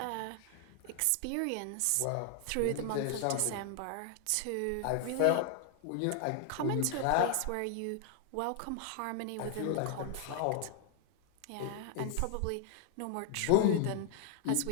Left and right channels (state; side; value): different; both; correlation 0.00